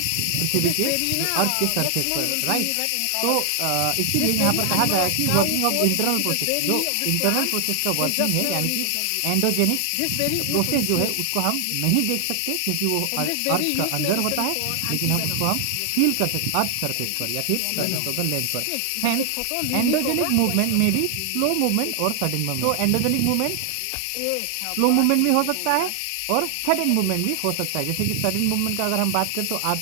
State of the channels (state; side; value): different; both; correlation 0.00